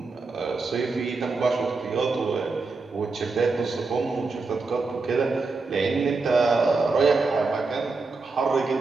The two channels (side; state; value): left; quieter; 4.0 dB